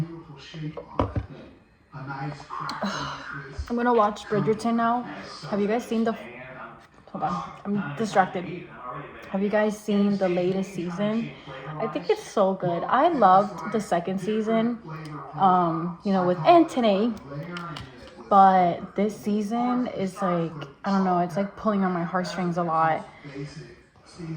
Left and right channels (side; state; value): both; identical; correlation 1.00